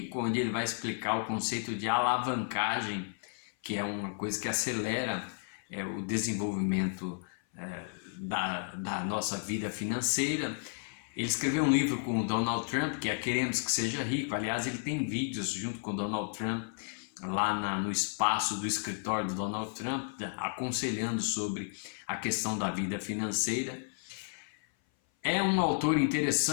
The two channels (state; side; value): silent; right; 56 dB below the other